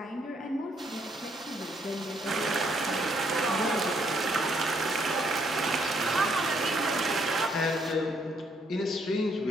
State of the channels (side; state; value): both; normal; correlation 0.70